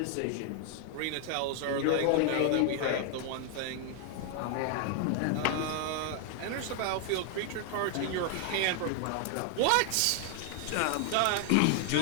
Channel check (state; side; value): different; both; correlation 0.00